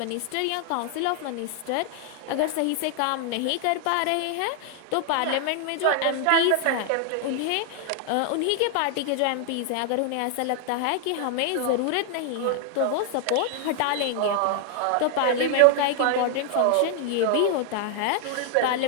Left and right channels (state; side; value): different; both; correlation 0.00